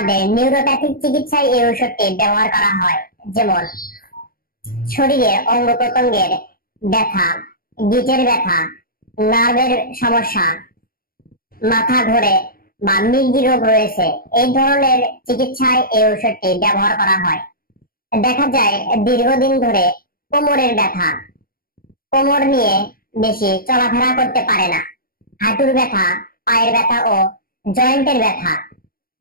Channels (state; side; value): late; right; 0.43 ms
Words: নিউরোপ্যাথিক চিকিৎসায় এই ঔষধটি ব্যবহার করা হয়। যেমন শরীরের অঙ্গ প্রত্যঙ্গের ব্যথা, গিটের ব্যথা, নার্ভের সমস্যা, মাথা ঘোরে বা মির্গি রোগ রয়েছে, এই ধরনের চিকিৎসায় এই ঔষধটি ব্যবহার করা হয়। দেখা যায় দীর্ঘদিন ধরে কোমরের ব্যথা, কোমর নিয়ে বেশি চলাফেরা করতে পারে না, হাঁটুর ব্যথা, পায়ের ব্যথা ও জয়েন্টের ব্যথা,